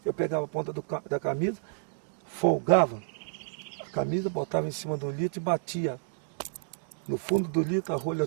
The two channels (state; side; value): silent; left; digital silence